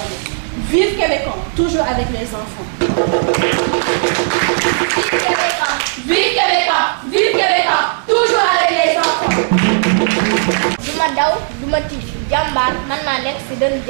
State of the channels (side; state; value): left; silent; digital silence